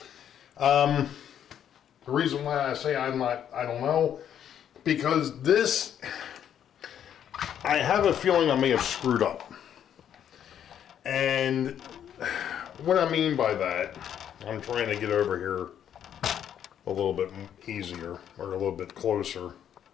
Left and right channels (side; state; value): right; quieter; 9.5 dB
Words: The reason why I say I don't know, because this, I have a feeling I may have screwed up. And what I mean by that, I'm trying to get over here a little bit easier, or a little bit closer.